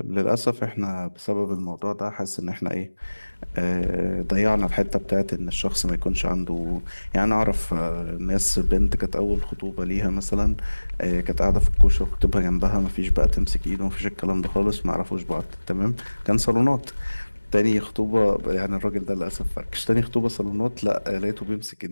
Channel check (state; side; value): inverted; both; correlation -1.00